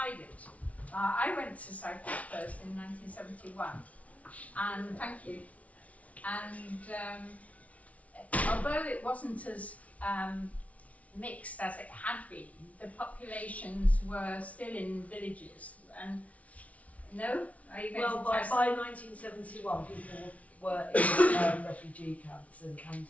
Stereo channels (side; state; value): right; late; 0.067 ms